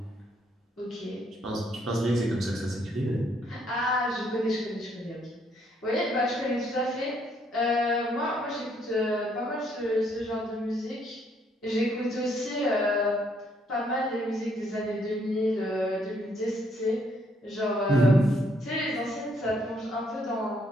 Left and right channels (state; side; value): normal; both; correlation 0.70